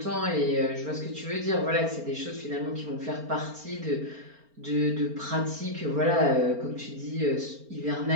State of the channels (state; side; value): late; left; 4.4 ms